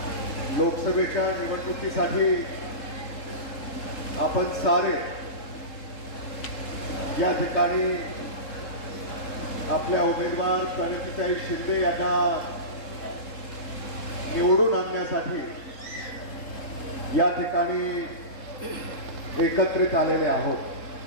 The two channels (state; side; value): late; right; 3.7 ms